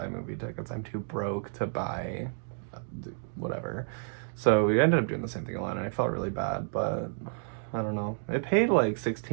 movie tickets. I'm too broke to buy whatever. So we ended up doing the same thing a lot, and I felt really bad, but I don't know. It paid like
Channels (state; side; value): silent; left; 58 dB below the other